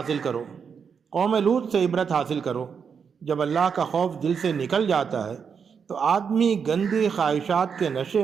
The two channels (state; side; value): quieter; left; 6.5 dB